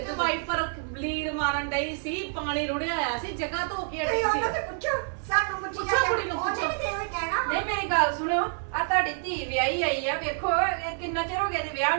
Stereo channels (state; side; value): silent; left; digital silence